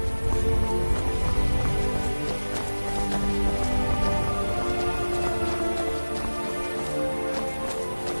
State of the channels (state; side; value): inverted; both; correlation -1.00